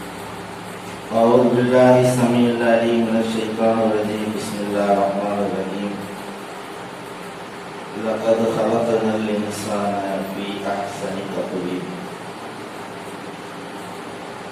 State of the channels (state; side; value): identical; both; correlation 1.00